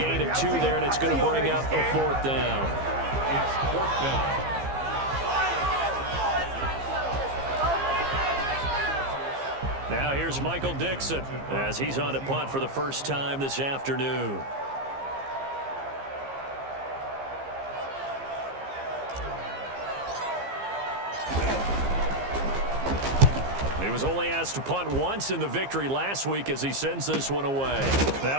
of 2 there, and it's going to bring up a 4th down. It's 4th down. Now here's Michael Dixon as he's on a punt for the first time this afternoon. He was only asked to punt once in the victory last week as he sends this one away.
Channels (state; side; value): late; left; 15 ms